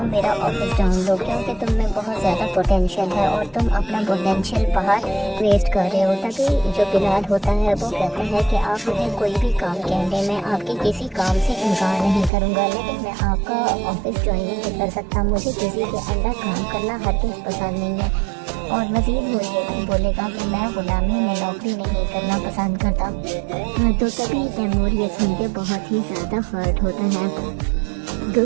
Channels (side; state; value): left; drops out; at 12.3 s